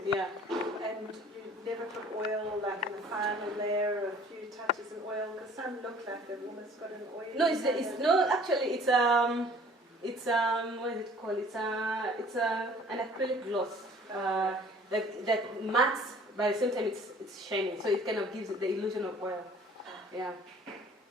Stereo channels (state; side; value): normal; both; correlation 0.52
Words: Yeah. And you never put oil like in the final layer, a few touches of oil, because some look like they've almost got an oil. No, it's what is it called? It's an acrylic gloss. That mattes, but at the same time it's shiny, so it kind of gives it the illusion of oil. Yeah.